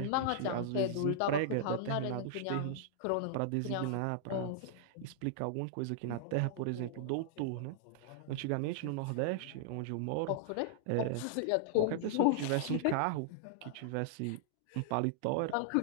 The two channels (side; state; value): both; different; correlation -0.01